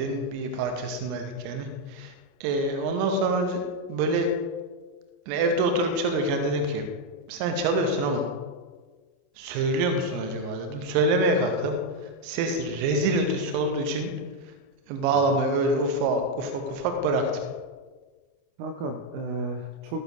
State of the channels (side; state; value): left; late; 29 ms